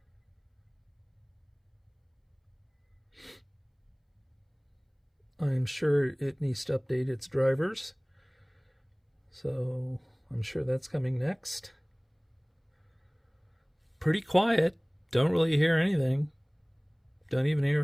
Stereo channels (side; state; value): both; identical; correlation 1.00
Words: I'm sure it needs to update its drivers, so I'm sure that's coming next. Pretty quiet. Don't really hear anything. Don't even hear